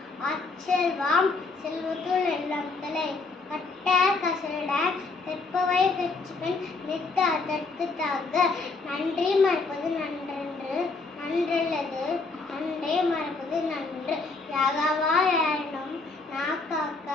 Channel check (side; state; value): right; quieter; 3.9 dB